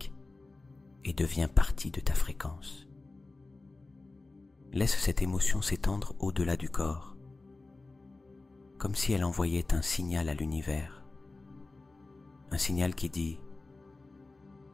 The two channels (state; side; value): quieter; right; 3.3 dB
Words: et devient partie de ta fréquence. Laisse cette émotion s'étendre au-delà du corps, comme si elle envoyait un signal à l'univers, un signal qui dit